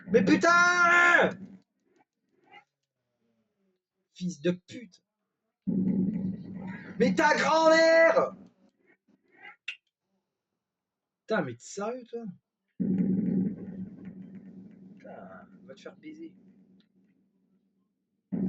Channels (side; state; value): both; identical; correlation 1.00